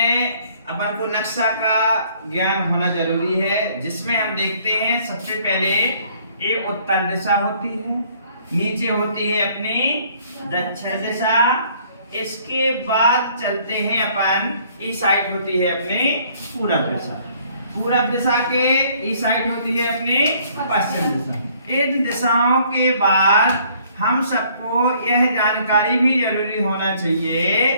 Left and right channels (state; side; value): inverted; both; correlation -0.61